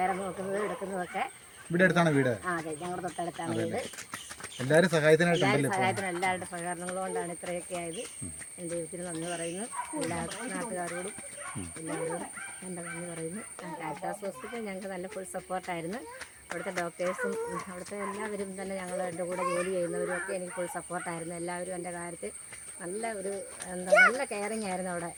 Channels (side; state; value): both; identical; correlation 1.00